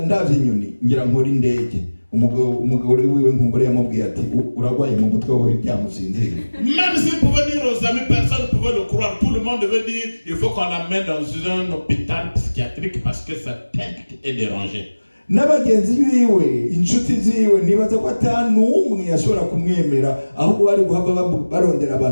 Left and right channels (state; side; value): inverted; both; correlation -1.00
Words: ndavye inyoni ngira nkora indege. Umugore wiwe nkumbure yamubwiye ati uragwaye mu mutwe wawe byamusinzira. Même s'il pouvait dire aux amis, personne ne pouvait le croire. Tout le monde devait dire, il faut qu'on l'amène dans un hôpital psychiatrique parce que sa tête est dérangée. N'abagenzi biwe inshuti ziwe nibaza ko atanumwe yashobora kumwemera ahubwo bari guhava barondera